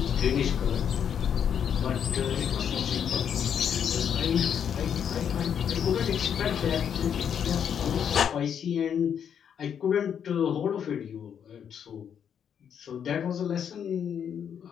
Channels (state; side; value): quieter; right; 8.2 dB